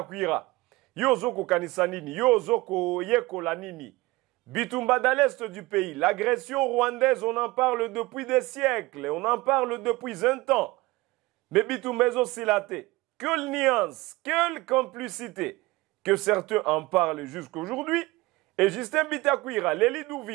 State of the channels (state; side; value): quieter; left; 20.9 dB